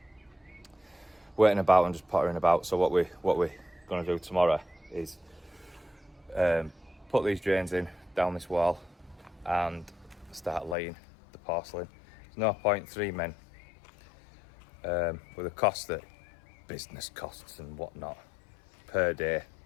Waiting about and just pottering about. So what we're gonna do tomorrow is put these drains in down this wall and start laying the porcelain. There's no point 3 men with the cost that business costs and whatnot per day,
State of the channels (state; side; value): drops out; right; at 10.8 s